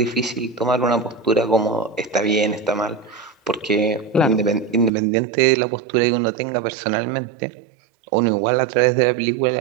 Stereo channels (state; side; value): drops out; left; at 4.9 s